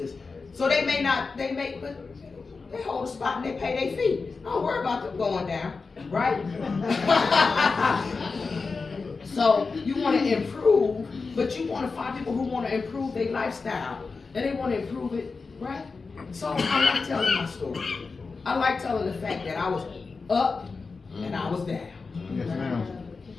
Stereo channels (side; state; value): right; quieter; 4.4 dB